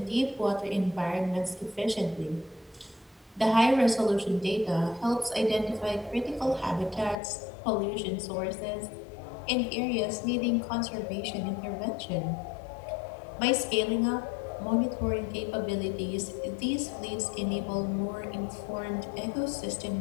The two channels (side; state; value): right; drops out; at 7.2 s